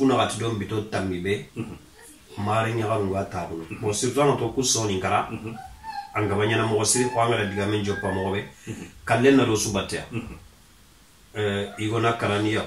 gati dom bito tamibe mari nyaga ngata ko mo sirtano to kusoni kara angabanya na mo siri ko angala diga men joppa mo be kallen na do subatia igona karani ya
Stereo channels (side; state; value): both; identical; correlation 1.00